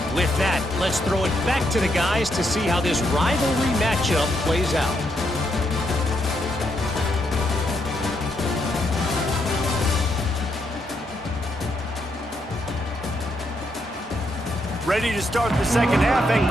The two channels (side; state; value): both; normal; correlation 0.78